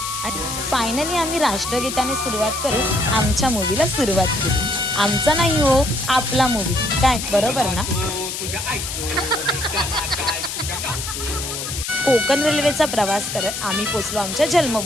आणि फायनली आम्ही राष्ट्रगीताने सुरुवात करून आमच्या मूवीला सुरुवात केली। आमचा नाही हो, आपला मूवी, काय बरोबर ना। कोकण रेल्वेचा प्रवास करत आम्ही पोचलो आमच्या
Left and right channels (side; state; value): left; noise; hiss, 5 dB below the sound